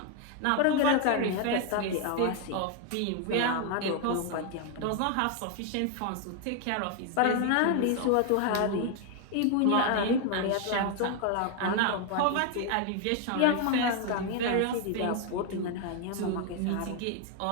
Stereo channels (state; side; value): different; both; correlation 0.01